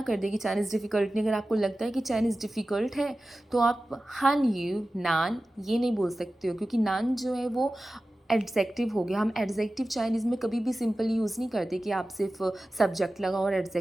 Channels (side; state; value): both; normal; correlation 0.95